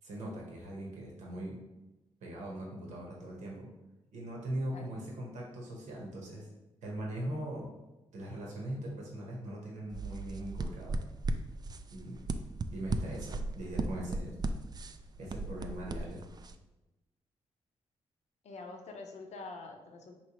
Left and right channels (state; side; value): normal; both; correlation 0.81